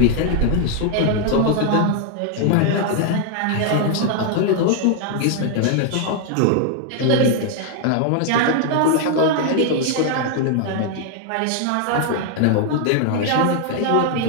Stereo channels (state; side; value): different; both; correlation 0.00